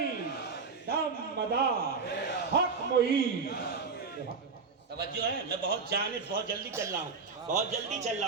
دم مدار حق معین۔ توجہ ہے، میں بہت جلدی چل رہا ہوں، بہت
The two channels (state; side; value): quieter; left; 4.9 dB